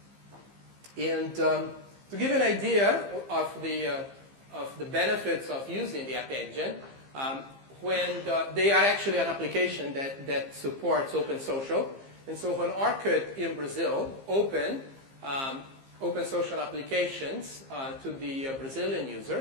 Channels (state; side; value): late; left; 15 ms